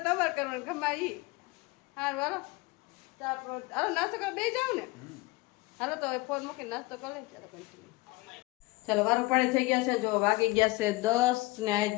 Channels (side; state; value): right; quieter; 22.1 dB